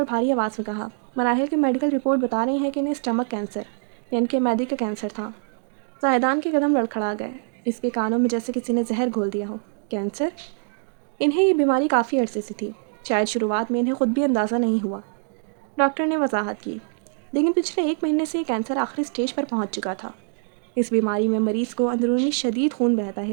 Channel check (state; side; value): silent; left; 60 dB below the other